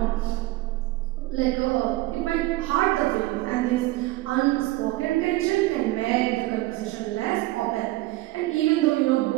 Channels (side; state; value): left; quieter; 18.7 dB